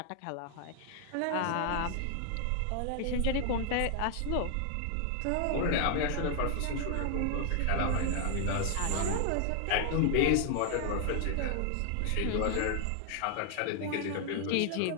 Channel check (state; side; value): different; both; correlation 0.00